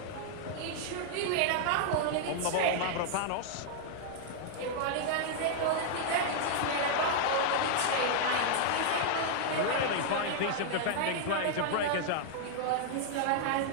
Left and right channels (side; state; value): both; different; correlation -0.01